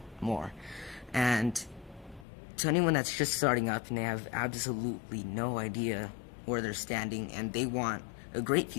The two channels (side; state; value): right; drops out; at 2.2 s